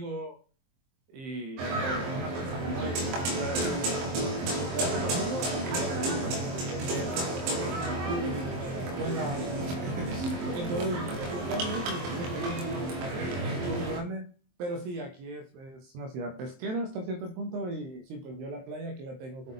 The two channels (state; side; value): late; left; 23 ms